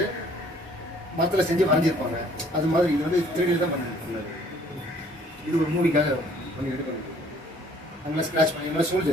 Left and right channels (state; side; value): normal; both; correlation 0.58